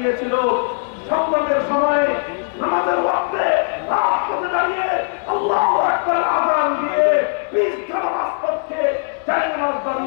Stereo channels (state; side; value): silent; right; 66 dB below the other